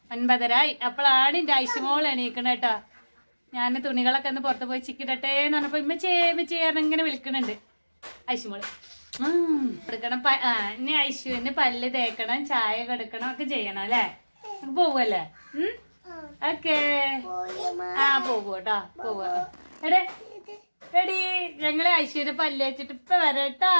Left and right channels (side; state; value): both; inverted; correlation -1.00